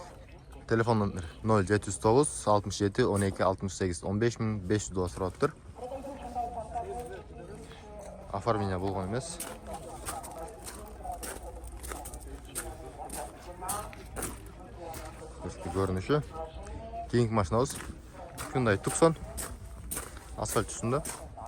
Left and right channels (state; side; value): identical; both; correlation 1.00